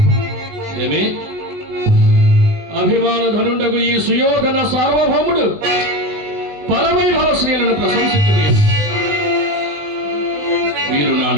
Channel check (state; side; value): late; left; 20 ms